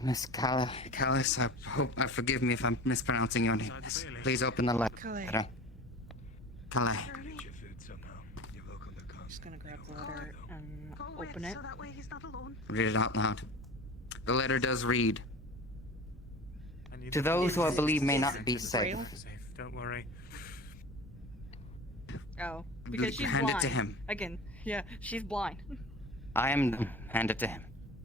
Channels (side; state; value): both; normal; correlation 0.36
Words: Miss Callis, forgive me if I'm mispronouncing your name. Yes. Please open the letter. Calais. Get your food somehow. You're welcome to come. Just gonna grab the letter and Go with, open it. so that way he's not alone. Read it out loud. The letter does read. I need To those who I believe may not be safe. Safe. Don't worry. Oh, because she's Hand blind. it to him. Again, yeah, she's blind. I am. Hand it to him.